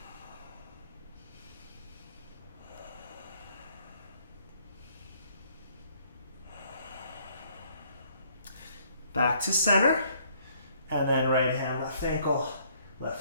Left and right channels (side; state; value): both; inverted; correlation -0.65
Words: Back to center, and then right hand, left ankle,